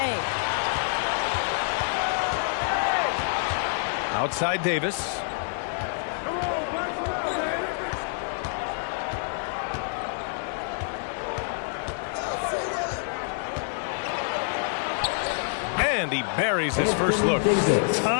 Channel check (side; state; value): right; silent; digital silence